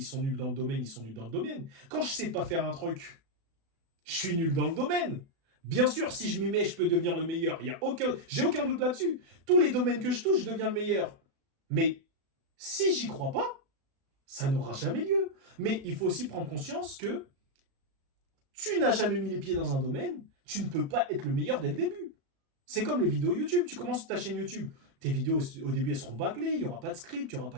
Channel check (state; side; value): late; left; 36 ms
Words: sont nuls dans le domaine, ils sont nuls dans le domaine. Quand je sais pas faire un truc, je suis nul dans le domaine. Bien sûr, si je m'y mets, je peux devenir le meilleur. J'ai aucun doute là-dessus. Tous les domaines que je touche, je deviens le meilleur. Mais si j'y crois pas, ça n'aura jamais lieu. Mais il faut aussi prendre conscience que tu n'as jamais mis les pieds dans un domaine, tu ne peux pas être le meilleur dès le début. C'est comme les vidéos YouTube. Tu commences ta chaîne YouTube, Tes vidéos, au début, elles seront bâclées, il n'y aura pas de script, il n'y aura pas